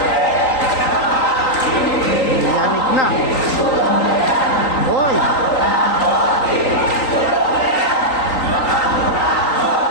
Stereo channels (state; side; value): late; right; 3.9 ms